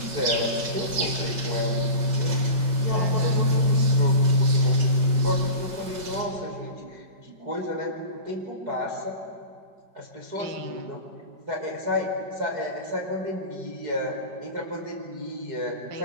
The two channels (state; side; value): late; left; 5.2 ms